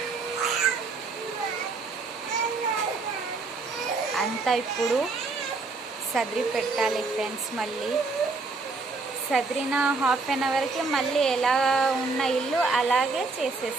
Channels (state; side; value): quieter; left; 4.0 dB